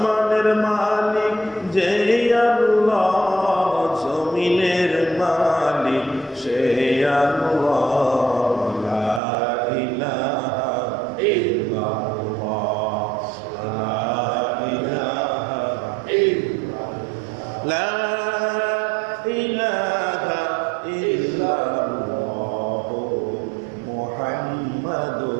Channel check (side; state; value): left; drops out; at 9.2 s